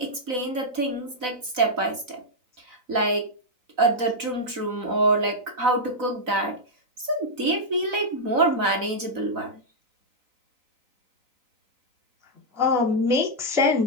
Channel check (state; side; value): late; left; 4.0 ms